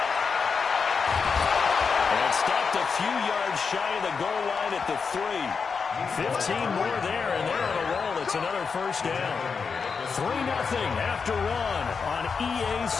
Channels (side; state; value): right; quieter; 5.5 dB